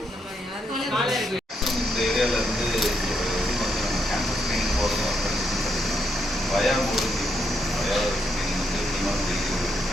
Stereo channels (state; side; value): normal; both; correlation 0.78